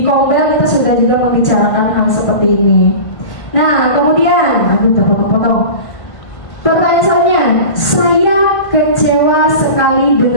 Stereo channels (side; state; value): right; late; 1.8 ms